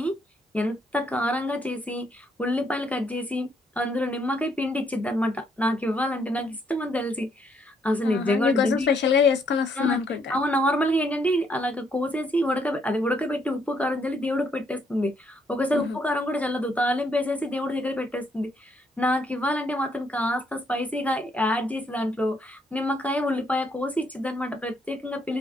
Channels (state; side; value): normal; both; correlation 0.71